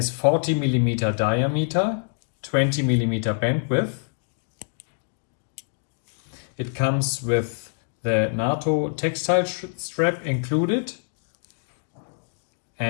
40 mm diameter, 20 mm bandwidth. It comes with the NATO textile strap included,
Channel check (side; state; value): right; silent; digital silence